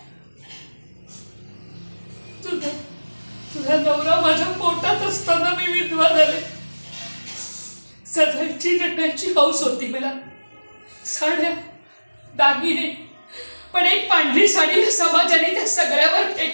तुझा तुझा नवरा माझ्या पोटात असताना मी विधवा झाले. सजायची नटण्याची हौस होती मला. साड्या, दागिने, पण एक पांढरी साडी समाजाने त्या सगळ्यावर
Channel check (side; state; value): both; inverted; correlation -1.00